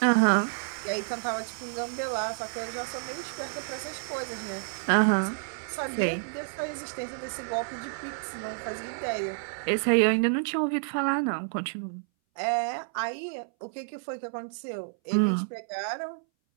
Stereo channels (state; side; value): silent; left; 58 dB below the other